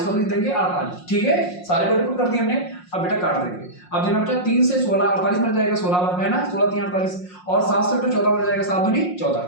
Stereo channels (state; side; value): late; right; 5.6 ms